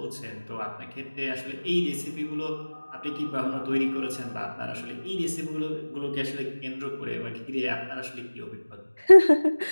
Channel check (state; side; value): inverted; both; correlation -1.00